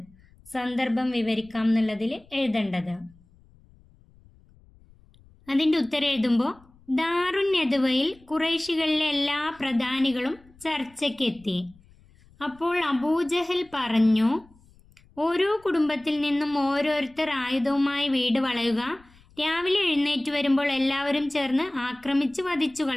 സന്ദർഭം വിവരിക്കാം എന്നുള്ളതിൽ എഴുതേണ്ടത്. അതിൻ്റെ ഉത്തരം എഴുതുമ്പോൾ ദാറുൻ നദ്വയിൽ ഖുറൈശികളിലെ എല്ലാ പ്രധാനികളും ചർച്ചയ്ക്കെത്തി. അപ്പോൾ അബൂജഹൽ പറഞ്ഞു, ഓരോ കുടുംബത്തിൽ നിന്നും ഓരോരുത്തർ ആയുധവുമായി വീട് വളയുക. രാവിലെ എഴുന്നേറ്റ് വരുമ്പോൾ എല്ലാവരും ചേർന്ന് ആക്രമിച്ച് വധിച്ചു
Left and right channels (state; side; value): noise; left; rumble, 28 dB below the sound